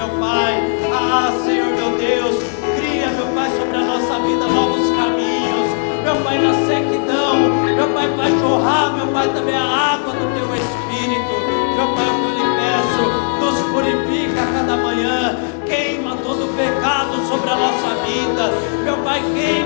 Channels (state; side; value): silent; right; digital silence